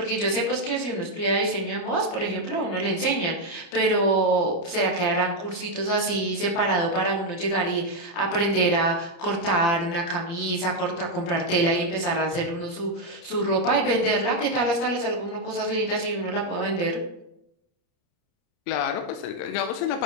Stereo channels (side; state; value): right; late; 29 ms